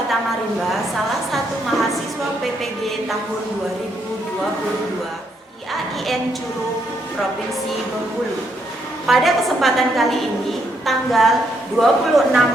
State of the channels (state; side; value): normal; both; correlation 0.75